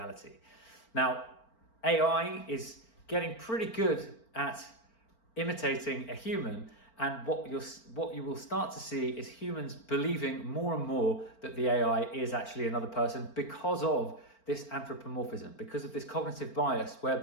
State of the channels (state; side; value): late; right; 4.4 ms